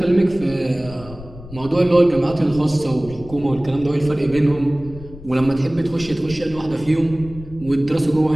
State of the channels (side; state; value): left; noise; rumble, 16 dB below the sound